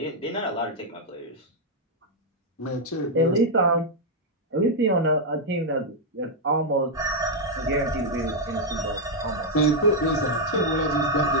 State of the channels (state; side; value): normal; both; correlation -0.02